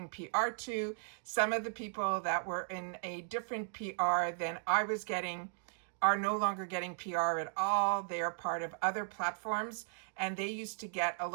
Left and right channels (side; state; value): left; silent; digital silence